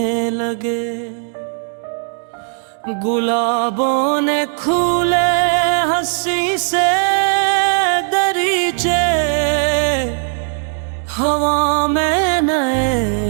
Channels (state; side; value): silent; left; 57 dB below the other